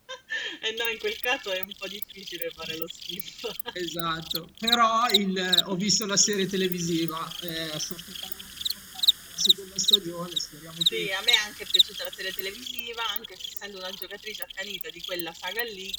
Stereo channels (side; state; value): both; identical; correlation 1.00